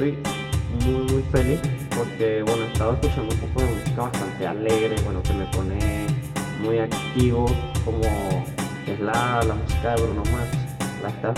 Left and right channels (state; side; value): identical; both; correlation 1.00